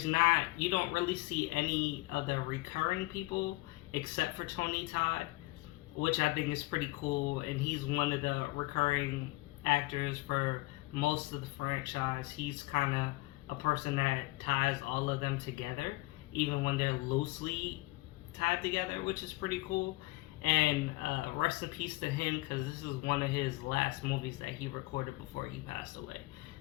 not, you don't really see any of the recurring people except for Tony Todd, which I think is pretty cool, and he's one of the recurring actors for most of the franchise. He's kind of a person that ties all of them together, even when they're loosely tied together, which is pretty cool. And rest in peace to him, because this is one of his last movies that he recorded before he passed away.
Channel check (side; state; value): right; quieter; 21.5 dB